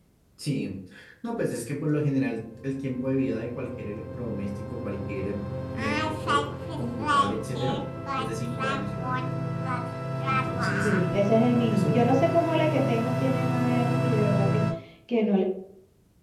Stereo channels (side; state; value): both; identical; correlation 1.00